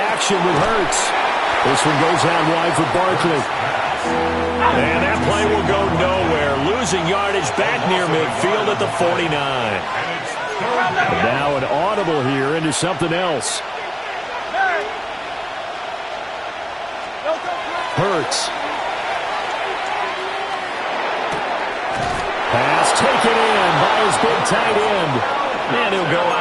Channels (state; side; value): identical; both; correlation 1.00